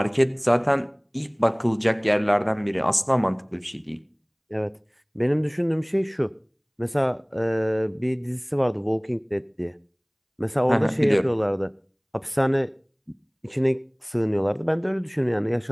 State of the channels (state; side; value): identical; both; correlation 1.00